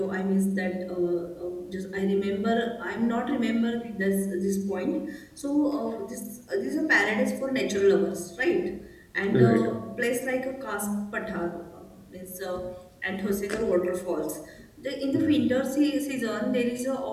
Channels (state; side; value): identical; both; correlation 1.00